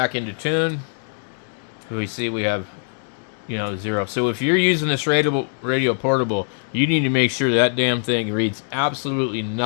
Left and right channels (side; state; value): right; silent; 64 dB below the other